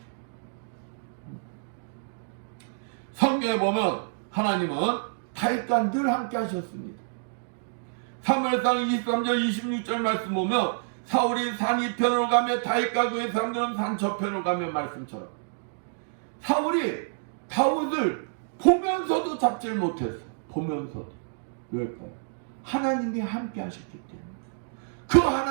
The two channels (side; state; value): left; silent; digital silence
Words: 성경에 보면 하나님은 다윗과 늘 함께 하셨습니다. 사무엘상 23절 26절 말씀 보면 사울이 산 이편으로 가며 다윗과 그의 사람들은 산 저편으로 가며 말씀처럼 사울이 다윗을 보면서도 잡질 못했어. 보면서도. 왜일까요? 하나님이 함께 하셨기 때문에. 그